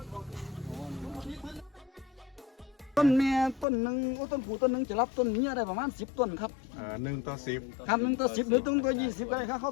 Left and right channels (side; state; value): right; drops out; at 3.7 s